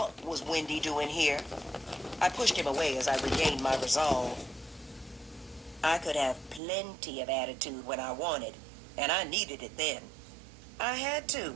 was Wendy doing here? I pushed him away as I regained my resolve. I could have plenty of attitude when I wanted, and I needed it then. I had to,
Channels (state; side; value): drops out; left; at 6.6 s